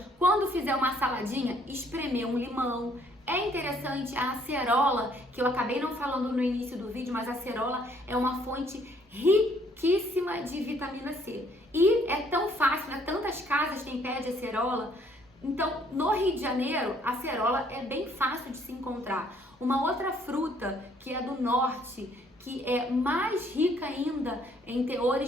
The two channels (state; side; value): normal; both; correlation 0.64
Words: quando fizer uma saladinha, espremer um limão. É interessante a acerola, que eu acabei não falando no início do vídeo, mas a acerola é uma fonte riquíssima de vitamina C. E é tão fácil, né? Tantas casas têm pé de acerola. Então, no Rio de Janeiro, a acerola é bem fácil de se encontrar. Uma outra fruta que é do norte, que é mais rica ainda em